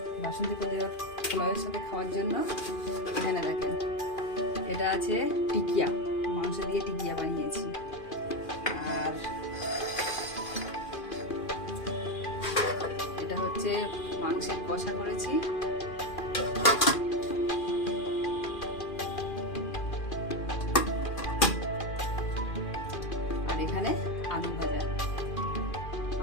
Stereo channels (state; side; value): late; right; 2.4 ms